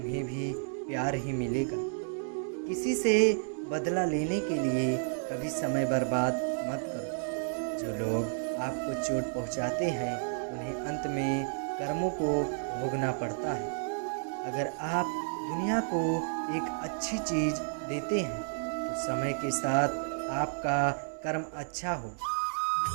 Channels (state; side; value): silent; left; digital silence